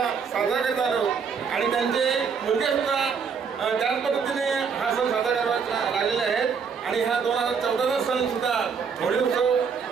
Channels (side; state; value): left; quieter; 6.1 dB